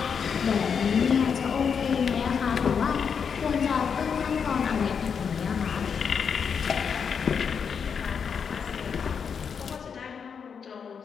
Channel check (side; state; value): right; quieter; 6.6 dB